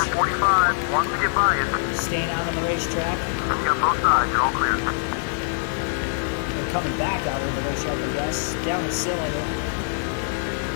45 wants to get by you. Staying out on the racetrack. You got both sides, you're all clear. They're coming back out of the racetrack, I guess. Down the cylinder.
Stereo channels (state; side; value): silent; right; 56 dB below the other